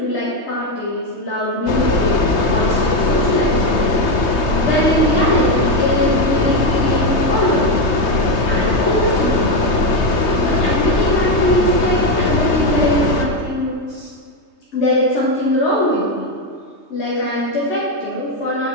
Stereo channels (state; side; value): late; right; 3.2 ms